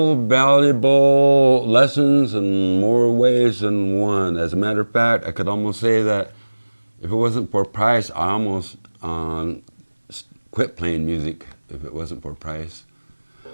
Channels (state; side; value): inverted; both; correlation -1.00